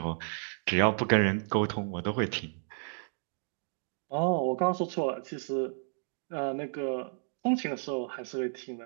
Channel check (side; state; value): left; silent; digital silence